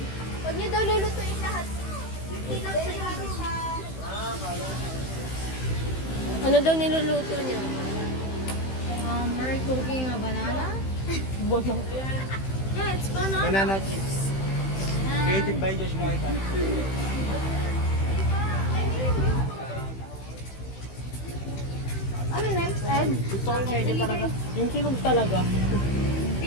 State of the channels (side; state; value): right; late; 15 ms